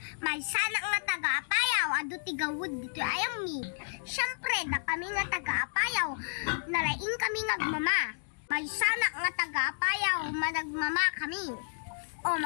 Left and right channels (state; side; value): silent; right; digital silence